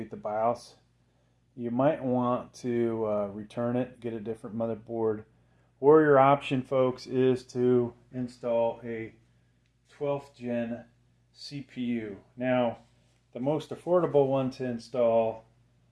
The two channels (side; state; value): both; identical; correlation 1.00